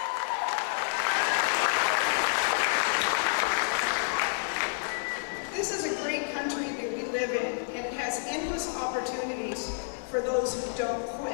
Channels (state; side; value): silent; right; digital silence